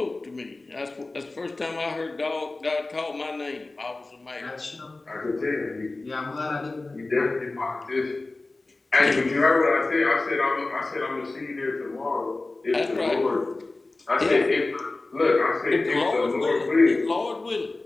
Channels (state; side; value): quieter; right; 3.2 dB